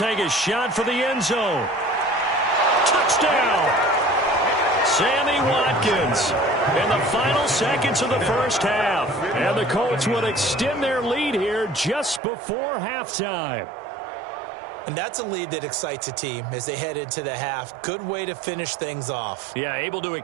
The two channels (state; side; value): drops out; left; at 12.2 s